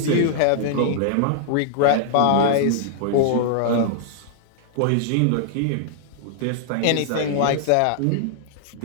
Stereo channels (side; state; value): both; different; correlation -0.01